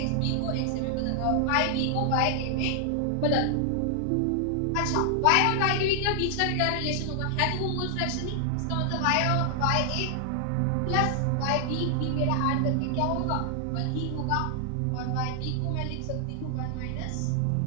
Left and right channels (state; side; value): different; both; correlation 0.00